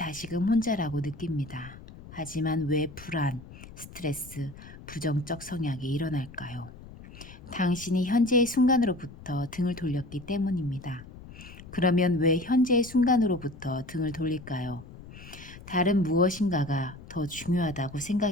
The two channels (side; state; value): left; noise; rumble, 17 dB below the sound